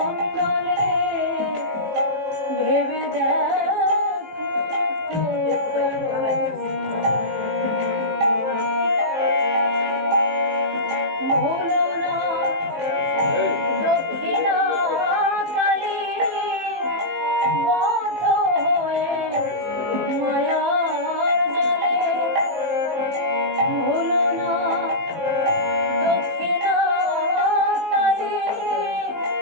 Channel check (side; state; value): left; late; 19 ms